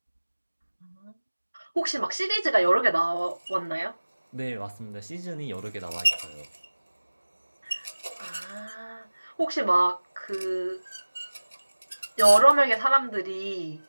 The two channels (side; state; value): both; inverted; correlation -1.00